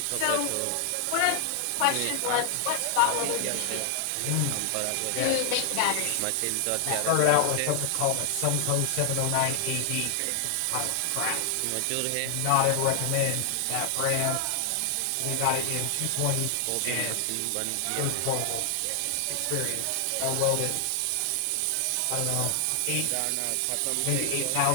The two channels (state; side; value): different; both; correlation 0.00